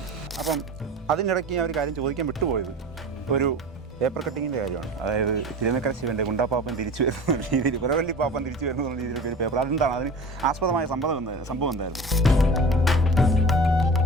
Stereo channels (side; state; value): both; normal; correlation 0.36